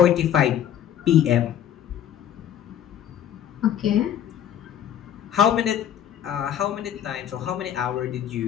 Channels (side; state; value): right; quieter; 10.1 dB